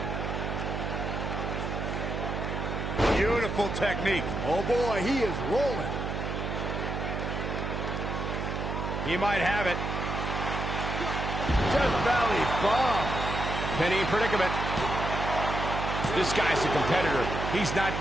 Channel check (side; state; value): right; noise; hum, 3 dB below the sound